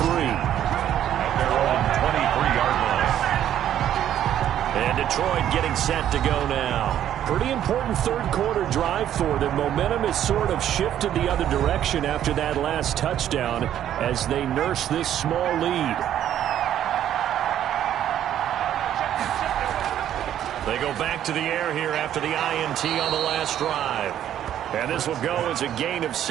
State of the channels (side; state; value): left; quieter; 10.9 dB